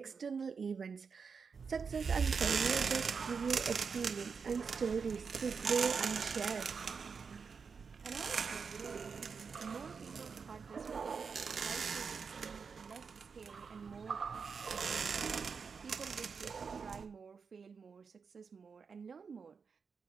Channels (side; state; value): left; quieter; 5.6 dB